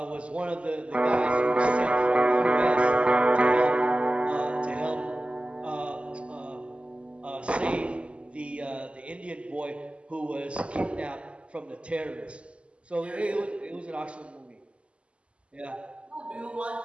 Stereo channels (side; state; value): left; late; 0.057 ms